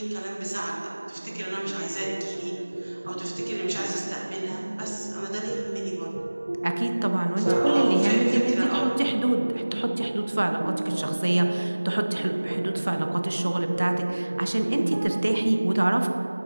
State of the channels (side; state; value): both; inverted; correlation -1.00